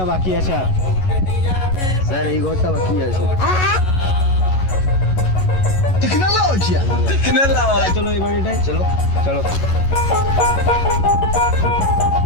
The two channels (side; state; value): right; late; 11 ms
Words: বাকি আছে। আর স্যার এই ঘরটা বাকি আছে। চলো এই বাড়িটায় চলো চলো।